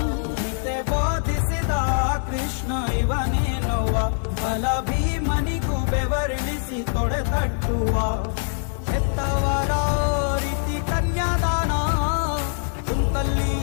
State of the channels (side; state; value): right; silent; digital silence